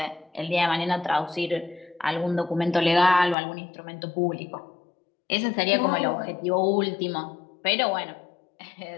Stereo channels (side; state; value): right; drops out; at 3.4 s